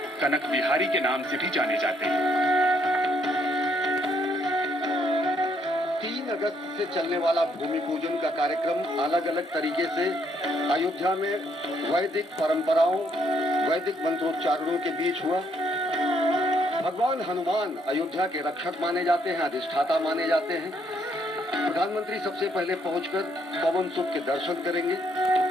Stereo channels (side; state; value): both; normal; correlation 0.71